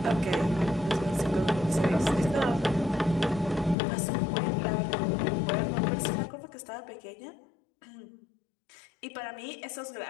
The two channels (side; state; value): right; drops out; at 3.8 s